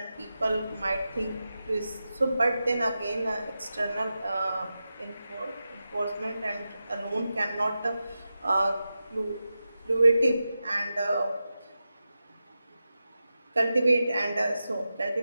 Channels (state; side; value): inverted; both; correlation -0.91